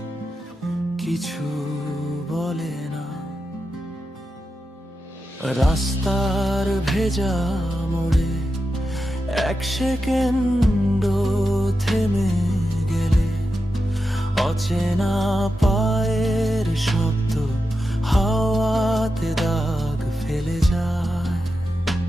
কিছু বলে না। রাস্তার ভেজা মোড়ে এক সেকেন্ড থেমে গেলে, অচেনা পায়ের শব্দ হাওয়াতে দাগ ফেলে যায়।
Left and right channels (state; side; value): normal; both; correlation 0.89